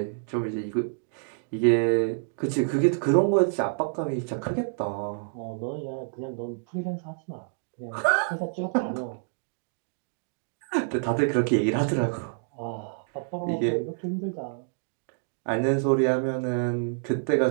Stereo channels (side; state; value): left; silent; digital silence